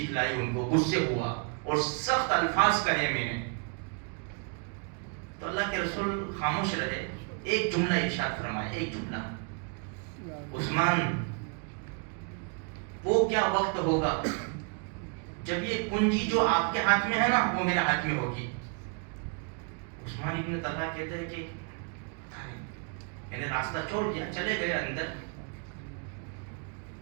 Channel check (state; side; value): quieter; left; 38.5 dB